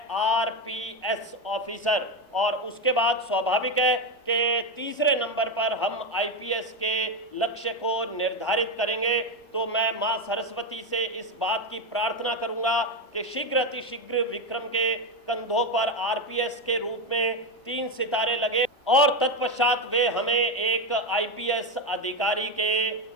आरपीएस ऑफिसर, और उसके बाद स्वाभाविक है कि तीसरे नंबर पर हम आईपीएस के लक्ष्य को निर्धारित करेंगे। तो मैं मां सरस्वती से इस बात की प्रार्थना करूंगा कि शीघ्र अतिशीघ्र विक्रम के कंधों पर आरपीएस के रूप में 3 सितारे लगे, और तत्पश्चात वे हमें एक आईपीएस अधिकारी के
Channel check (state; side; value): normal; both; correlation 0.11